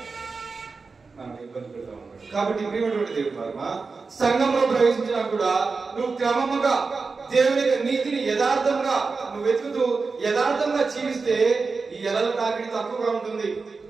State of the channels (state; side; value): quieter; left; 4.4 dB